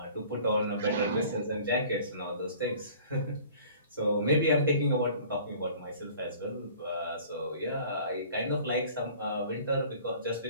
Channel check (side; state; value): both; inverted; correlation -0.49